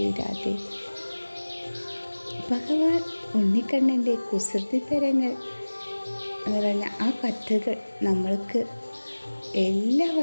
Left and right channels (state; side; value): inverted; both; correlation -1.00